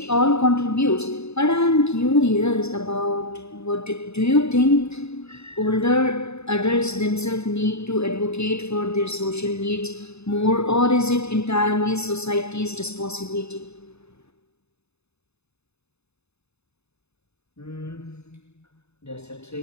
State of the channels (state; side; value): late; right; 0.80 ms